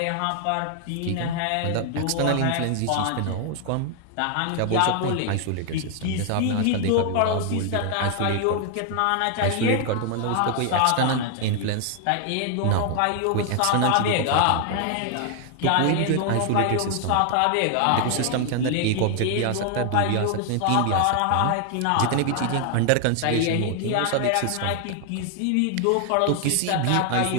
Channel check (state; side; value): different; both; correlation 0.00